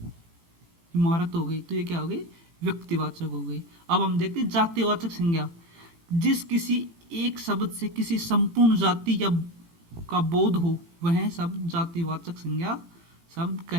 इमारत हो गई। तो ये क्या हो गई, व्यक्तिवाचक हो गई। अब हम देखते हैं जातिवाचक संज्ञा। जिस किसी एक शब्द से किसी संपूर्ण जाति या का बोध हो वह शब्द जातिवाचक संज्ञा शब्द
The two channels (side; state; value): left; late; 18 ms